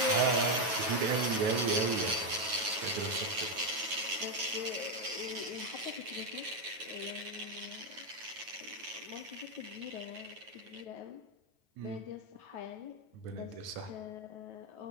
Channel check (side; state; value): left; late; 9.3 ms